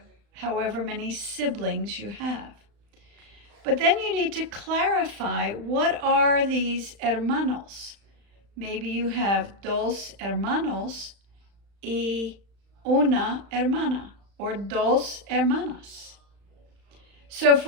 however many siblings you have. But then you need to clarify, what are these hermanos? Maybe you have dos hermanos y una hermana, or dos hermanas. So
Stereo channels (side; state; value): left; late; 35 ms